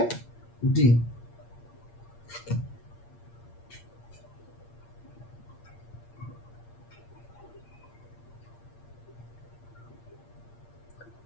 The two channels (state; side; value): late; right; 8.6 ms